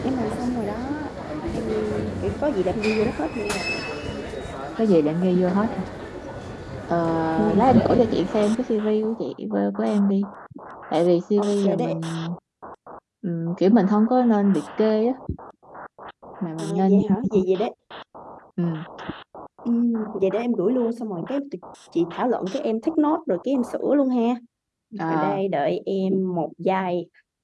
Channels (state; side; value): identical; both; correlation 1.00